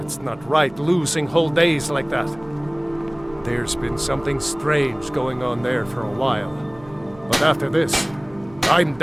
not right, losing whole days like that. There's been something strange going on there for a while. But after this, I'm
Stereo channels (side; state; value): right; noise; hum, 24 dB below the sound